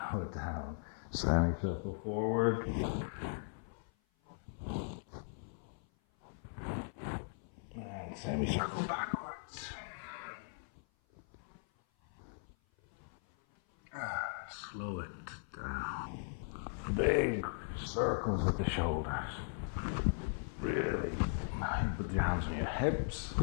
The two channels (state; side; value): silent; right; 52 dB below the other